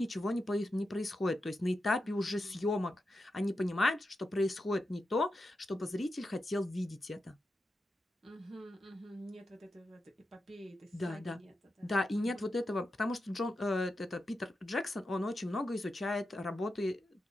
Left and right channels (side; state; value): both; normal; correlation 0.89